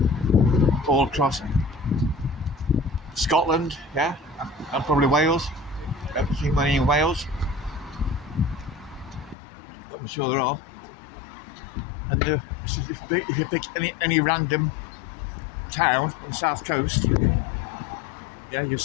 all across Scotland, yeah, and probably Wales. I haven't seen many in Wales, but I'm sure there are. And if you pick any random town on the south coast, yeah, you'll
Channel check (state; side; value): drops out; right; at 9.3 s